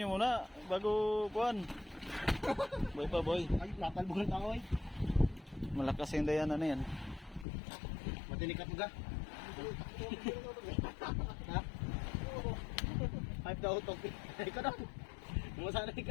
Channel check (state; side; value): drops out; right; at 7.5 s